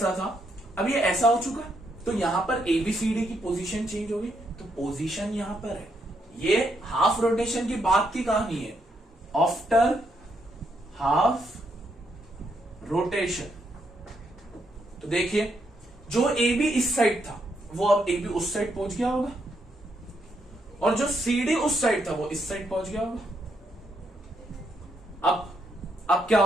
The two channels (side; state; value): both; normal; correlation 0.77